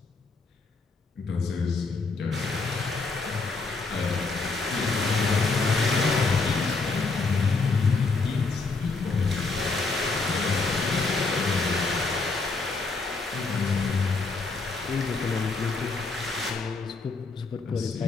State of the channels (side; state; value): right; quieter; 4.0 dB